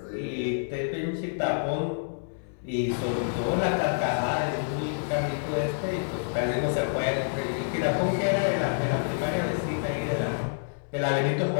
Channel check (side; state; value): right; silent; digital silence